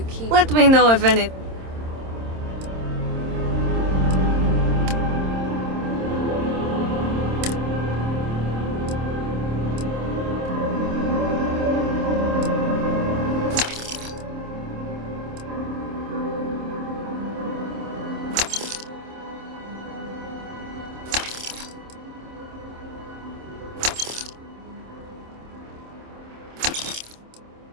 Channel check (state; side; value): late; left; 26 ms